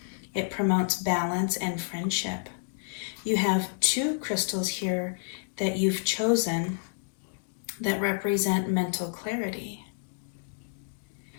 It promotes balance and friendship. You have 2 crystals here that you've chosen that represent mental clarity.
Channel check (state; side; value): silent; right; digital silence